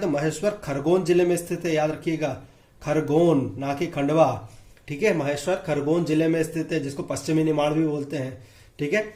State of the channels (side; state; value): both; identical; correlation 1.00